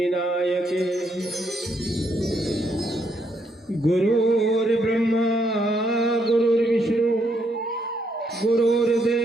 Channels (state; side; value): normal; both; correlation 0.75